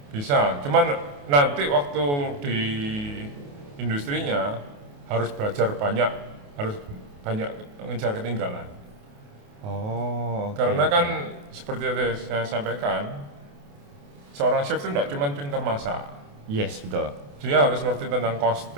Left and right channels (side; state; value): left; late; 28 ms